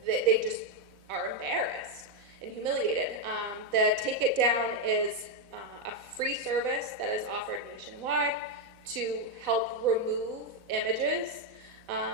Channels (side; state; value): left; late; 4.0 ms